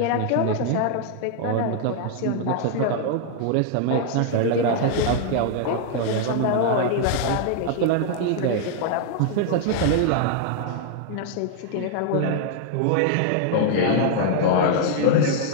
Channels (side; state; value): both; different; correlation 0.00